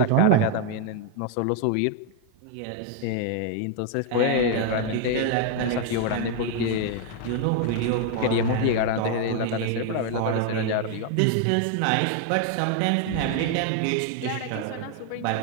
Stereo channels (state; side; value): different; both; correlation 0.01